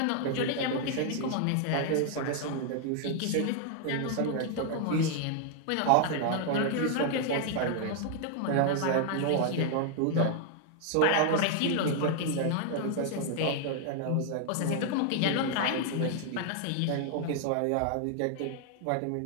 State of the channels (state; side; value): different; both; correlation 0.00